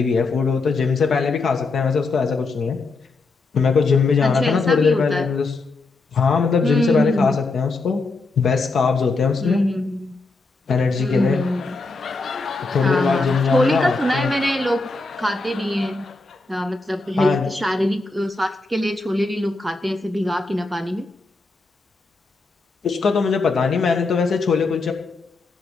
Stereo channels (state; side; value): quieter; right; 3.6 dB